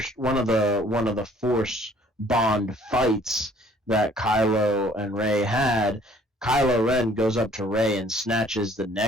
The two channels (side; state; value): both; normal; correlation 0.57